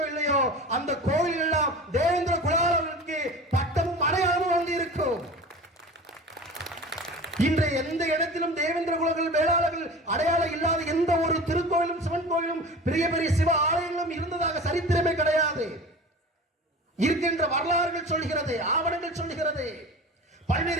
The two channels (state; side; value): normal; both; correlation 0.36